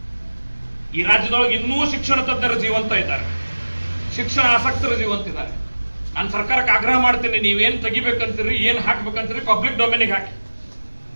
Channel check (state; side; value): inverted; both; correlation -1.00